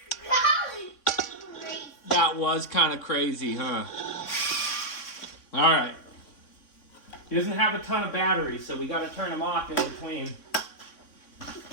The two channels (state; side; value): late; right; 3.6 ms